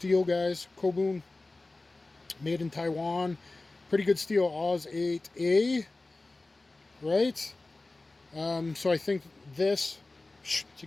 guys. Kobun. Made in Taiwan. Pretty good steel. Oz 8A. Right? So I think this, to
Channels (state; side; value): quieter; right; 3.2 dB